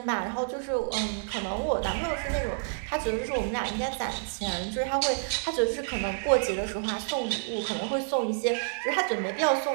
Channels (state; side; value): silent; left; 59 dB below the other